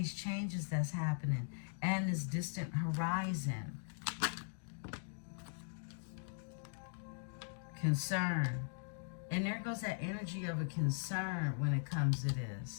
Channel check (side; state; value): right; silent; digital silence